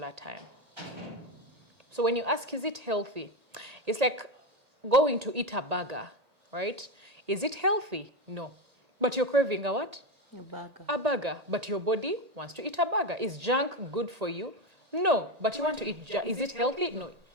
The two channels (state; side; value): late; left; 1.8 ms